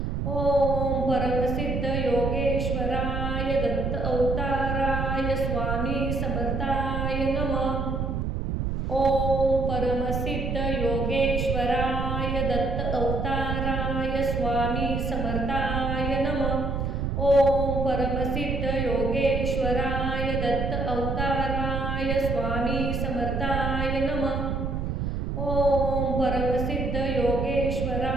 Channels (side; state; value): right; noise; rumble, 1 dB below the sound